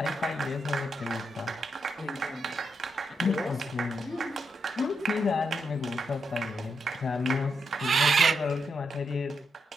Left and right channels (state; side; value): normal; both; correlation 0.82